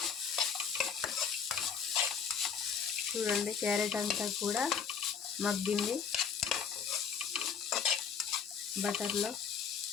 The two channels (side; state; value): right; quieter; 6.7 dB